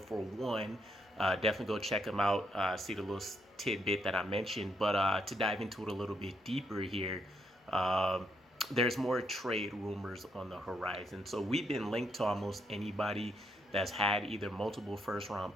one, definitely go check him out. See the little tidbit that I mentioned. But to dive into it a little bit deeper here, there's more trade rumors on the horizon. So we've been linked to almost anybody that's had either multiple first-round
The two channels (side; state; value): both; normal; correlation 0.76